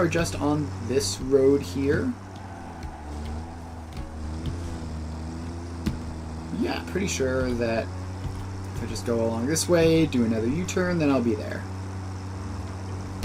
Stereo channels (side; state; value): both; identical; correlation 1.00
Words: just on this road here. Yeah, pretty sure that if I just go along this way, do another U-turn, then I'll be there.